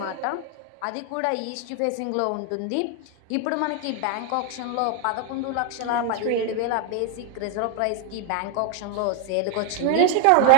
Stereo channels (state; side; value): different; both; correlation 0.00